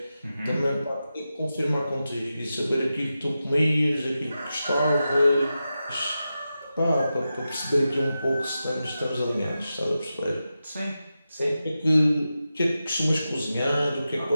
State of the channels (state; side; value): inverted; both; correlation -0.91